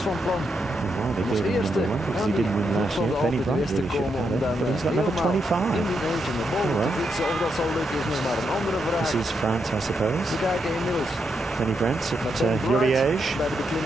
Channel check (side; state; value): both; normal; correlation 0.82